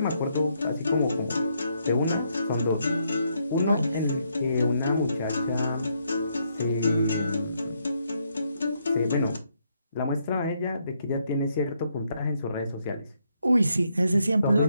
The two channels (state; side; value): inverted; both; correlation -0.76